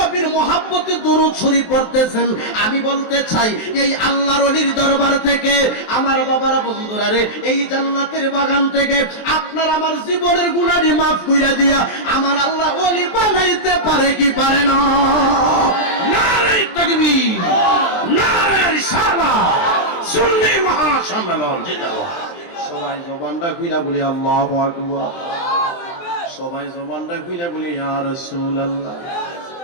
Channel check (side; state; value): right; late; 23 ms